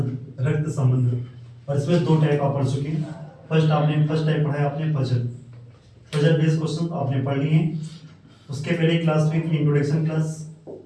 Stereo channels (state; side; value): identical; both; correlation 1.00